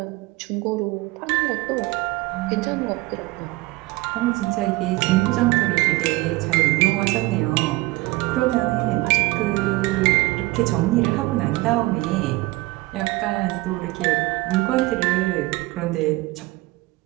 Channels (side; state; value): left; quieter; 20.9 dB